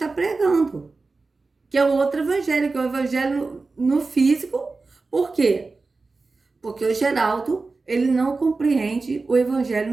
pregando. Que é o outro evangelho, que é o evangelho no físico. Por quê? Porque o Geraldo, ele não compreende o evangelho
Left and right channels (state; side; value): quieter; left; 3.8 dB